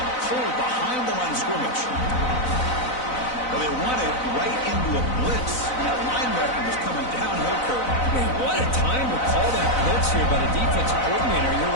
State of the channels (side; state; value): right; late; 4.0 ms